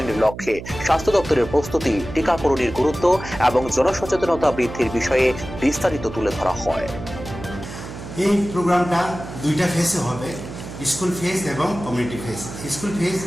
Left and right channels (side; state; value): right; noise; hum, 11 dB below the sound